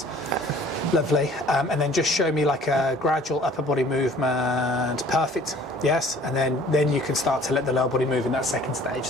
Lovely. And then just show me like a gradual upper body movement. Perfect. Yes. And then you can start to let the lower body move in that second stage.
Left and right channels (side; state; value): both; normal; correlation 0.52